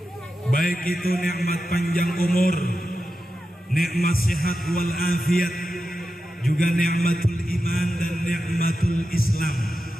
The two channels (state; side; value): normal; both; correlation 0.91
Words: baik itu nikmat panjang umur, nikmat sehat wal afiat, juga nikmatul iman dan nikmatul Islam.